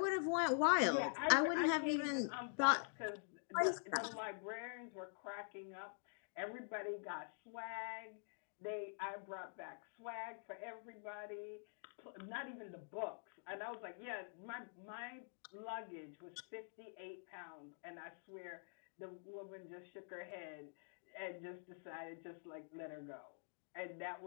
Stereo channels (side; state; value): right; silent; digital silence